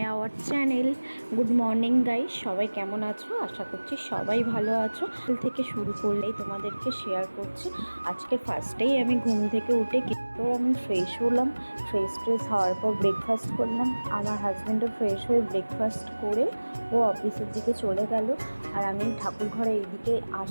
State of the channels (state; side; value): inverted; both; correlation -1.00